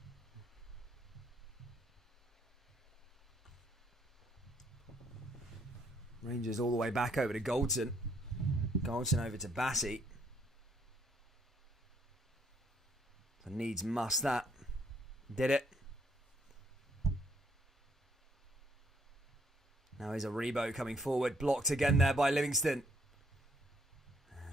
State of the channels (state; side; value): normal; both; correlation 0.68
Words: Rangers all the way back over to Goldson. Goldson over to Bassey. So needs must that. Did it. Now here's a Rebo coming forward. Blocked again there by Livingston.